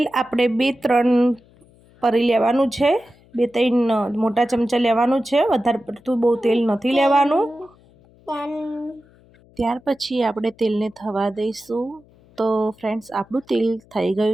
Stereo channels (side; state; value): left; noise; hum, 29 dB below the sound